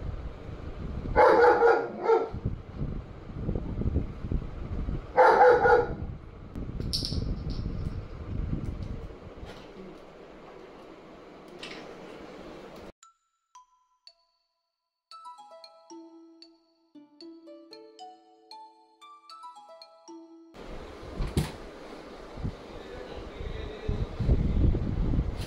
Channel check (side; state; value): both; identical; correlation 1.00